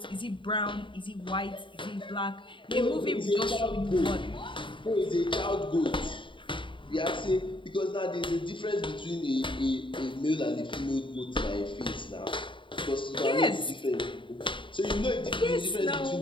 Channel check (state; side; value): late; right; 0.24 ms